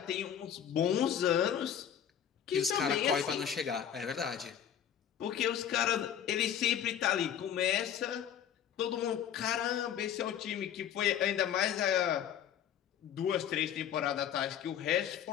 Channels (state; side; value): quieter; right; 9.3 dB